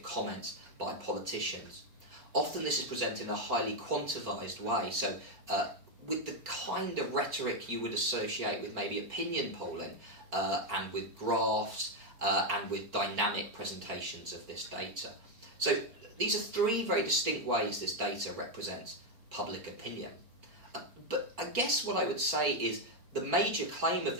comments by politicians. Often this is presented in a highly quantified way, so with the kind of rhetoric you would associate with maybe opinion polling, and with graphs, and with dynamic presentations of this data. So these are three very distinct ways this data represents public opinion. But I guess what I would say is the major claim of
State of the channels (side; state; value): left; late; 4.4 ms